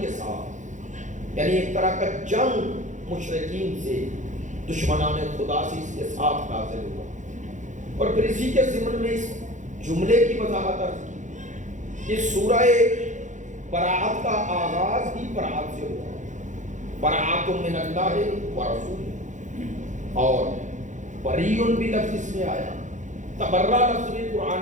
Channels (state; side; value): late; left; 0.36 ms